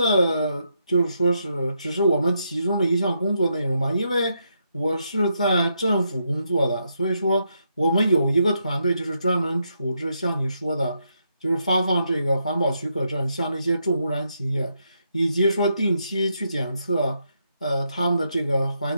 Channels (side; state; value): both; inverted; correlation -0.80